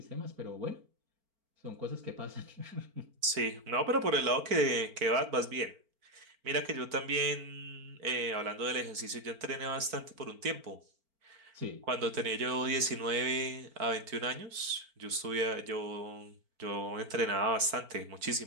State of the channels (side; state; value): left; late; 4.4 ms